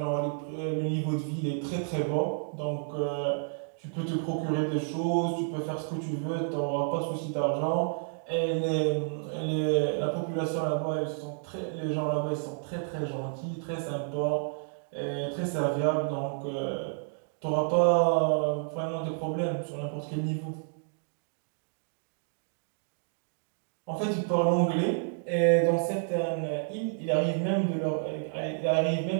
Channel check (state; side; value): silent; left; digital silence